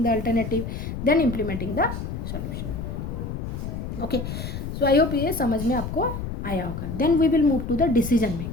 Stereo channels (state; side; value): noise; left; rumble, 6 dB below the sound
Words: the alternative, then implementing the solution. Okay, so I hope ये समझ में आपको आया होगा। Then we will move to the decision